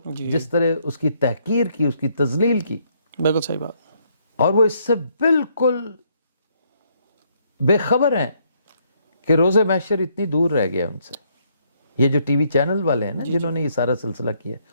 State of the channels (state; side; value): inverted; both; correlation -0.70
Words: جس طرح اس کی تحقیر کی, اس کی تذلیل کی, بالکل صحیح بات, اور وہ اس سے بالکل بے خبر ہیں کہ روز محشر اتنی دور رہ گیا ان سے. یہ جو ٹی وی چینل والے ہیں نا جنہوں نے یہ سارا سلسلہ کیا,